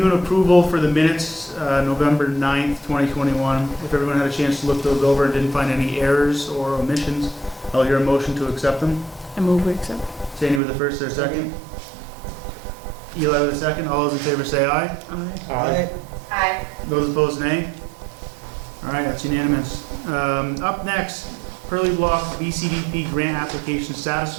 and approval for the minutes, November 9th, 2021. If everyone had a chance to look those over and didn't find any errors or omissions, I'll hear a motion to accept them. I move we accept. Sandy with the first, or second? Eli with the second. All those in favor say aye. Aye. Aye. Aye. Those opposed, nay. All right, that's unanimous. Up next, Pearly Block BCDP grant application status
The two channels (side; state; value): left; drops out; at 10.6 s